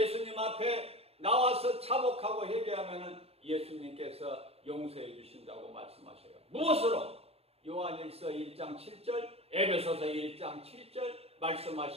앞에 나와서 자복하고 회개하면은 예수님께서 용서해 주신다고 말씀하셔요. 무엇으로? 요한일서 1장 7절, 에베소서 1장 7절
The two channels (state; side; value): late; left; 0.29 ms